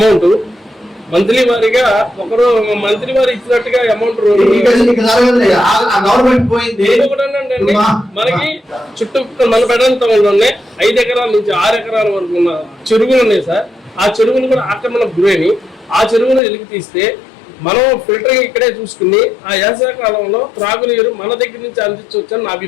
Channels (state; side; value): drops out; right; at 16.4 s